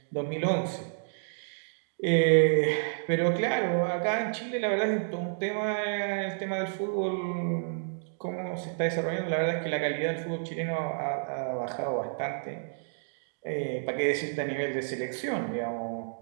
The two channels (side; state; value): left; silent; digital silence